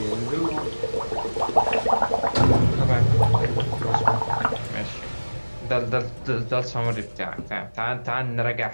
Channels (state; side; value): inverted; both; correlation -1.00